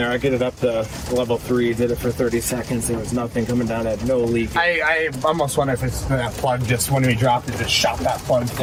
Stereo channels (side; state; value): both; identical; correlation 1.00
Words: I get it up to level 3, did it for 30 seconds. There was nothing coming down, had no leak. I almost wonder if it's that plug just when we dropped it, just shot that plug.